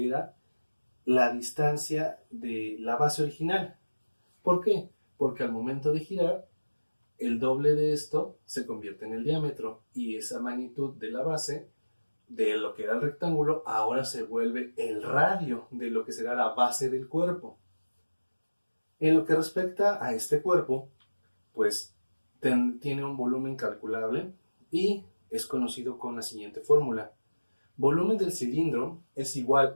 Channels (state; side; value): inverted; both; correlation -1.00